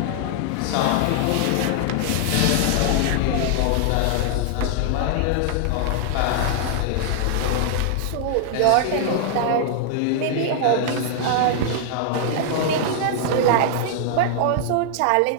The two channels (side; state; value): both; different; correlation -0.01